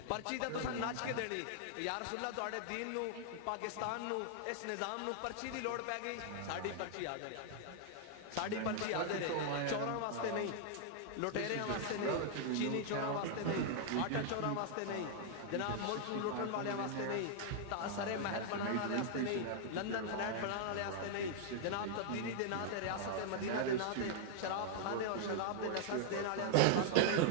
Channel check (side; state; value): both; different; correlation 0.00